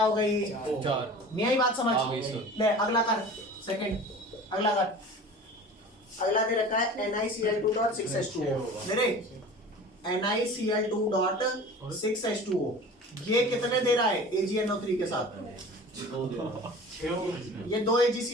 हो गई? 4। नहीं आई बात समझ? आ गई सर। ले अगला कर, सेकंड अगला कर। अगला दे रखा है NiCl2.6H2O। मेरे NiCl2.6H2O ये कितने दे रहा है AgNO3 के साथ? ये 2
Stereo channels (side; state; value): both; normal; correlation 0.39